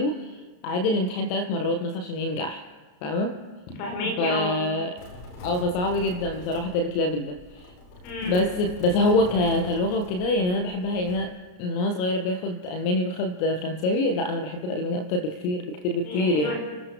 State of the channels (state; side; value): late; right; 33 ms